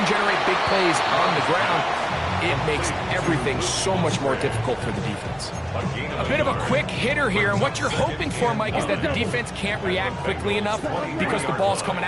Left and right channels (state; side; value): identical; both; correlation 1.00